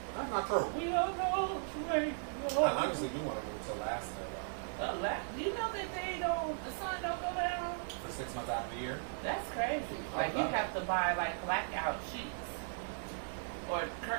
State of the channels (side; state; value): left; silent; digital silence